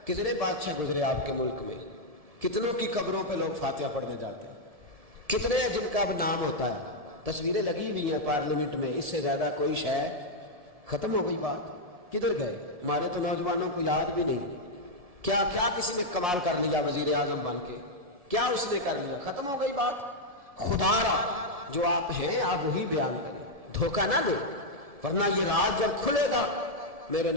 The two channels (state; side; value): late; left; 1.7 ms